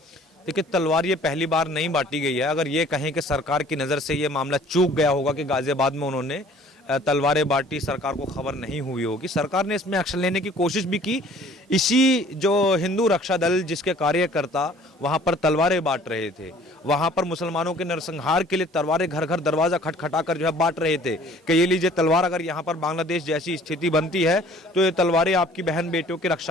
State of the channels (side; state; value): both; normal; correlation 0.53